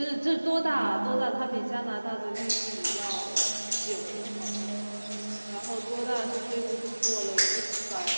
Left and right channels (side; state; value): both; inverted; correlation -1.00